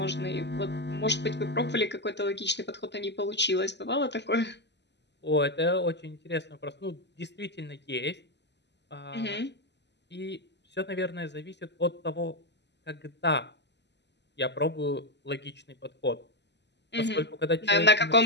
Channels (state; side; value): late; right; 0.50 ms